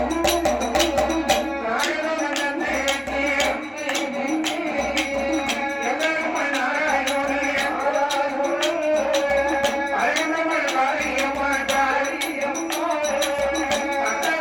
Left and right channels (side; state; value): both; identical; correlation 1.00